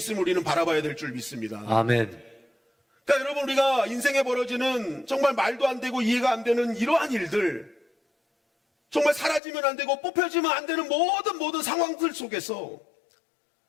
우리는 바라봐야 될 줄 믿습니다. 아멘. 그러니까 여러분 우리가 인생에 벌어지는 정말 말도 안 되고 이해가 안 되는 이러한 일들, 정말 사라지면 안 되고 뽑혀지면 안 되는 모든 상황들 속에서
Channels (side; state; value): right; drops out; at 9.4 s